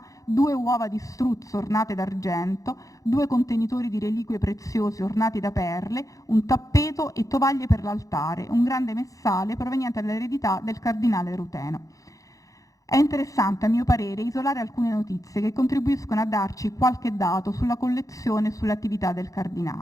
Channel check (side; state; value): right; late; 0.16 ms